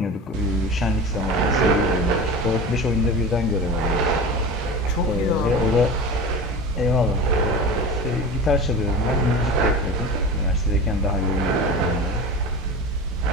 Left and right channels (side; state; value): both; normal; correlation 0.31